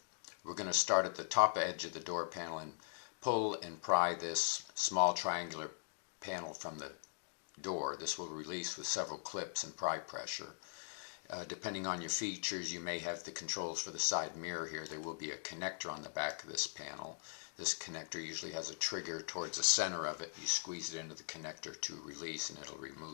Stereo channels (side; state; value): right; silent; digital silence